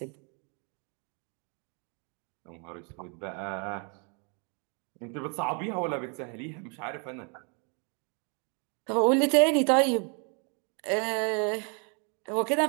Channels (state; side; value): quieter; left; 37.2 dB